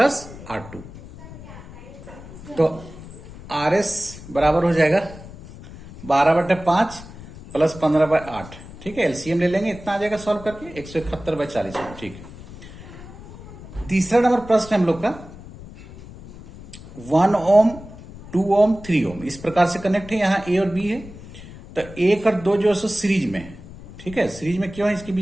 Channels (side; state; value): left; noise; rumble, 16 dB below the sound